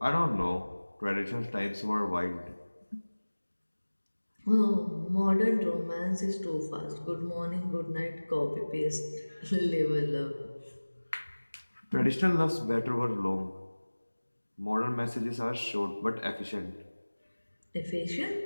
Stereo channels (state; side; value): inverted; both; correlation -1.00